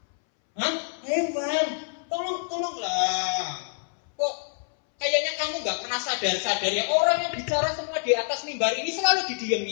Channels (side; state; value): right; silent; 61 dB below the other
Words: Hah? Heran. Tolonglah. Kok kayaknya kamu nggak pernah sadar ya, orang yang bicara semua di atas mimbar ini selalu